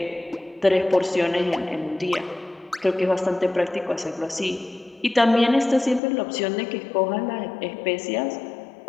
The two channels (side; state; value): right; drops out; at 6.0 s